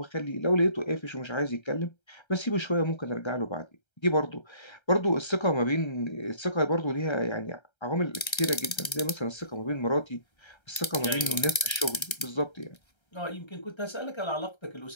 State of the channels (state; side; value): late; right; 1.3 ms